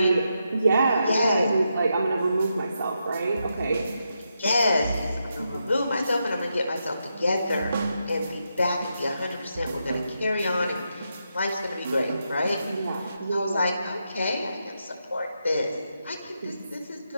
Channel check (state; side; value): inverted; both; correlation -0.84